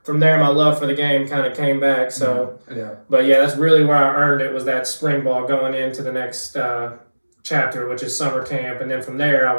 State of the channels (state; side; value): inverted; both; correlation -1.00